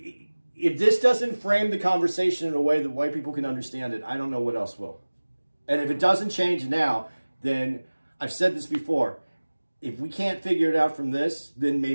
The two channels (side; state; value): both; inverted; correlation -1.00